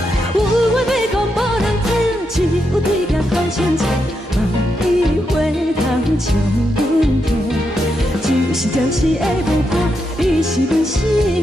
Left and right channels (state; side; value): normal; both; correlation 0.83